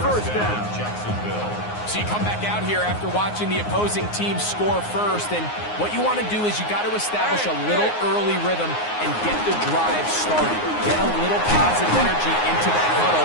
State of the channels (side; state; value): right; late; 9.6 ms